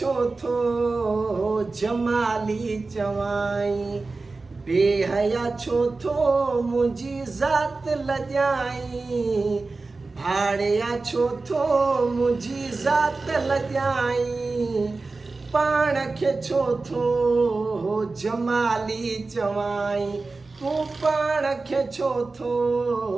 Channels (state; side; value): quieter; left; 3.7 dB